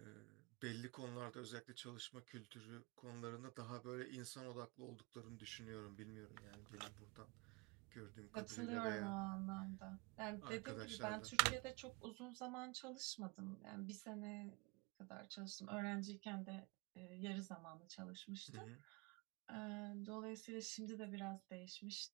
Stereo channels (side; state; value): left; quieter; 27.9 dB